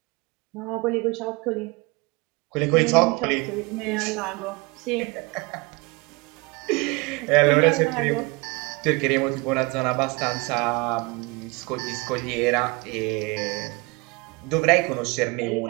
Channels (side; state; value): left; quieter; 26.3 dB